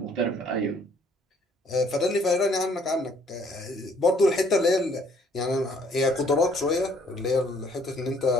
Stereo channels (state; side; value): normal; both; correlation 0.62